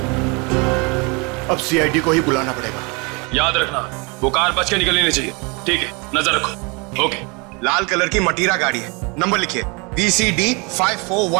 अब CID को ही बुलाना पड़ेगा। याद रखना, वो कार बच के निकलनी नहीं चाहिए। ठीक है, नजर रखो। ओके। लाल कलर की मटीरा गाड़ी है, नंबर लिखिए VCD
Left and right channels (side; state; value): left; quieter; 29.8 dB